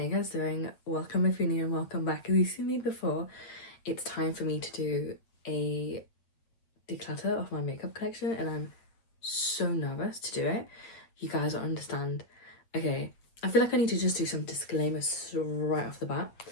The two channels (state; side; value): late; right; 8.8 ms